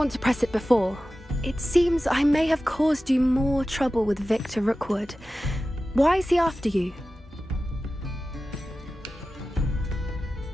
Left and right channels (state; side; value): normal; both; correlation 0.94